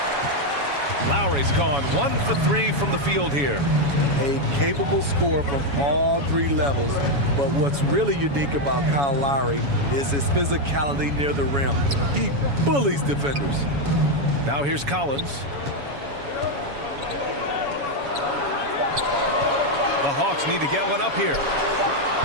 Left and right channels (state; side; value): late; left; 7.1 ms